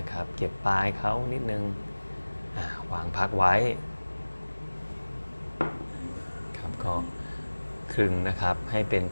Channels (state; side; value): inverted; both; correlation -1.00